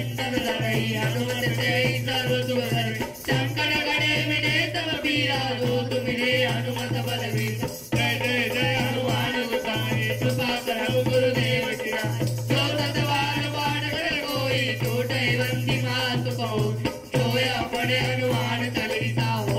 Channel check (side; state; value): both; identical; correlation 1.00